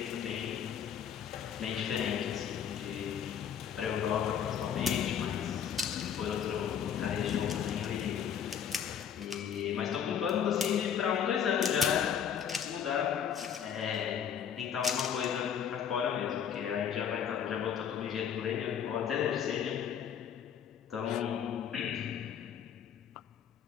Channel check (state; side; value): quieter; right; 8.3 dB